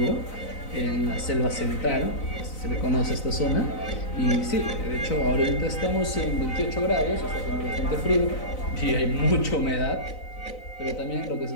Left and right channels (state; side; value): late; right; 3.9 ms